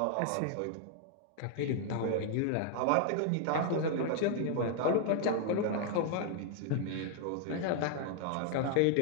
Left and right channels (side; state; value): both; different; correlation 0.00